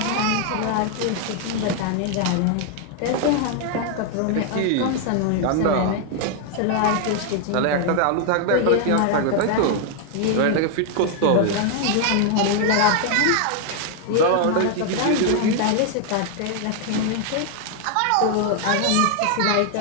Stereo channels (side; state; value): both; different; correlation 0.00